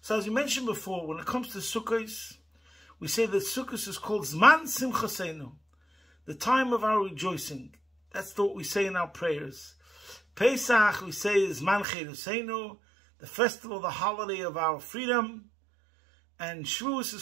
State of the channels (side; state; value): left; drops out; at 11.9 s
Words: So as we mentioned before, when it comes to Sukkos, we say that Sukkos is called Zman Simchaseinu, the time of our rejoicing. That's what we say in our prayers. Pesach, we say, is Zman Cheruseinu, the festival, the holiday of our freedom. And Shavuos